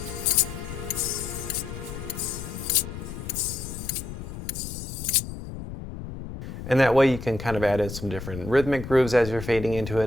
And that way you can kind of add in some different rhythmic grooves as you're fading into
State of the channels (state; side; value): noise; left; rumble, 9 dB below the sound